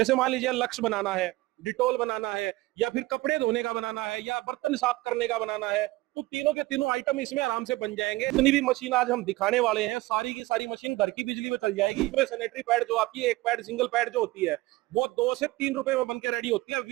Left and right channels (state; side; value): quieter; left; 19.7 dB